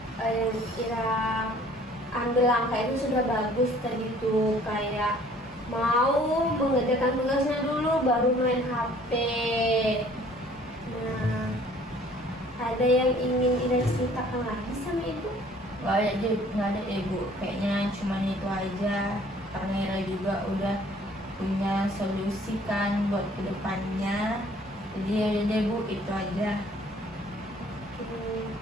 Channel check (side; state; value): both; normal; correlation 0.55